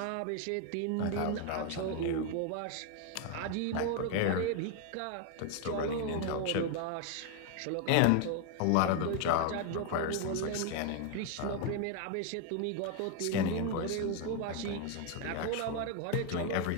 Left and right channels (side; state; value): both; different; correlation 0.01